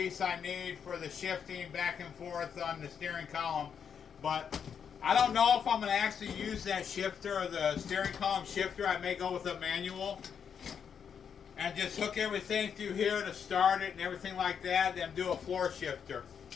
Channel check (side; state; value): right; quieter; 7.4 dB